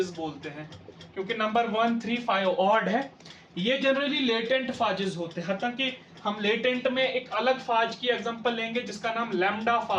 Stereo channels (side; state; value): both; identical; correlation 1.00